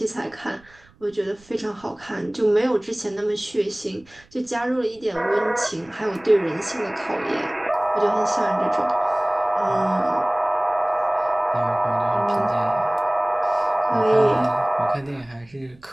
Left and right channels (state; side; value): noise; right; rumble, 29 dB below the sound